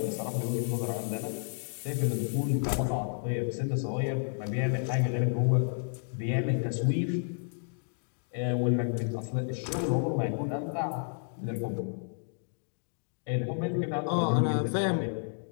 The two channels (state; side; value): silent; right; digital silence